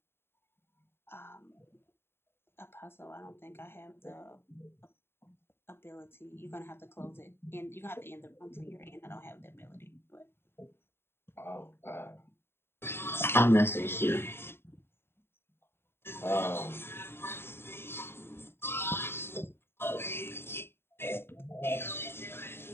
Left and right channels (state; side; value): late; right; 0.11 ms